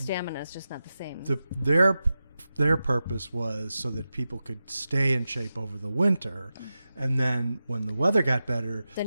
is just not the same. Their purpose was so that people could stay in shape over the winter, and then when the weather got better,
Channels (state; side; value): inverted; both; correlation -0.92